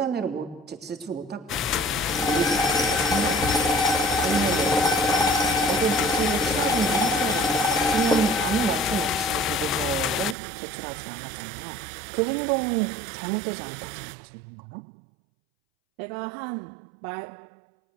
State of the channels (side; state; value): left; drops out; at 10.4 s